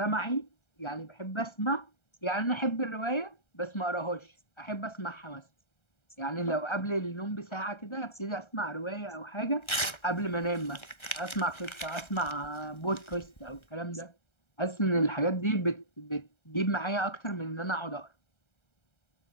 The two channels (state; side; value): late; right; 1.3 ms